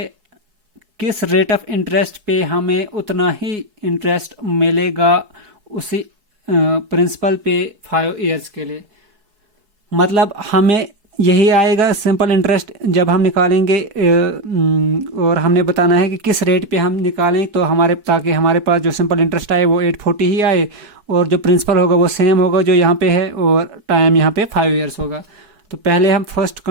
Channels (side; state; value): left; late; 4.7 ms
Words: किस रेट ऑफ इंटरेस्ट पे हमें उतना ही इंटरेस्ट मिलेगा उसी प्रिंसिपल पे 5 ईयर्स के लिए। मतलब हमें यही आएगा सिंपल इंटरेस्ट जब हम निकालेंगे, और हमने बताना है कि किस रेट पे हम निकालें, तो ताकि हमारे पास जो सिंपल इंटरेस्ट आए वो 840 ही आए, और जो प्रिंसिपल होगा वो सेम होगा जो यहाँ पे है, और टाइम यहाँ पे 5 ईयर्स होगा। तो पहले हम फर्स्ट